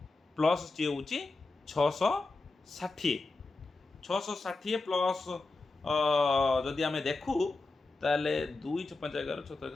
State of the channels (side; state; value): right; quieter; 3.5 dB